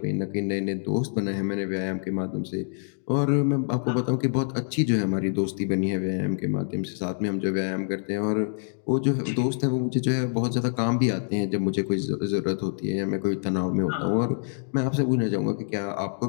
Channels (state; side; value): silent; right; digital silence